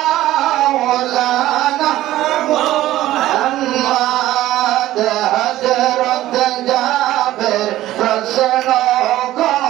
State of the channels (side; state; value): left; quieter; 14.9 dB